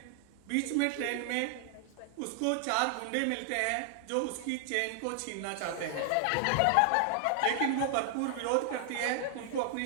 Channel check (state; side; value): different; both; correlation 0.00